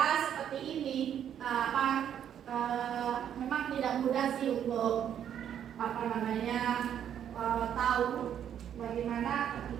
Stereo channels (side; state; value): left; quieter; 9.5 dB